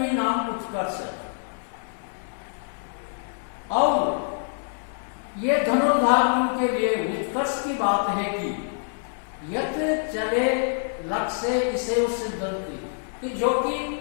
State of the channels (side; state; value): right; silent; digital silence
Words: नाम उत्कर्ष, और ये धनुर्धारियों के लिए उत्कर्ष की बात है कि यत चले लक्ष्य इसे सिद्धंति, कि जो कि